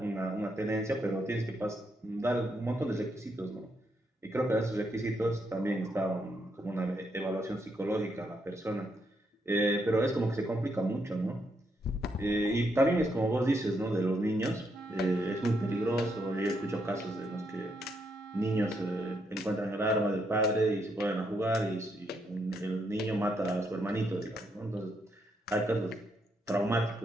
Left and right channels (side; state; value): both; normal; correlation 0.78